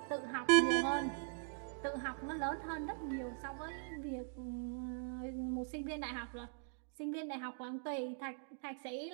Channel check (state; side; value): silent; left; digital silence